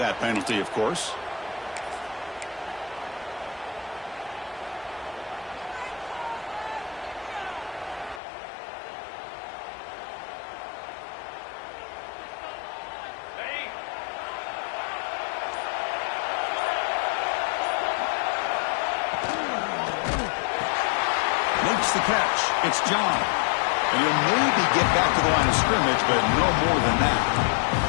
penalty, of course. The catch. It's John. And he'll maybe get back to the line of scrimmage, but no more than that.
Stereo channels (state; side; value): drops out; right; at 8.2 s